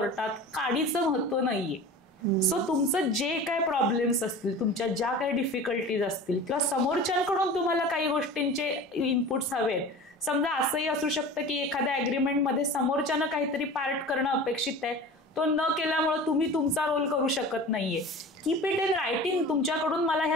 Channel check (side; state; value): both; normal; correlation 0.37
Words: काडीचं महत्व नाहीये. सो तुमचं जे काय प्रॉब्लेम्स असतील, तुमच्या ज्या काही डिफिकल्टीज असतील किंवा समोरच्यांकडून तुम्हाला काही गोष्टींचे इनपुट्स हवेत. समजा असंही असू शकतं की एखाद्या अग्रीमेंटमध्ये समोरच्यानं काहीतरी पार्ट करणं अपेक्षित आहे, तो न केल्यामुळे तुम्ही तुमचा रोल करू शकत नाहीये. Keep it in writing. तुमच्याकडून मला